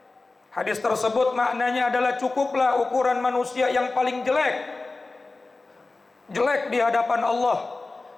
Hadis tersebut maknanya adalah cukuplah ukuran manusia yang paling jelek di hadapan Allah,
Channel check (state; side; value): quieter; right; 3.5 dB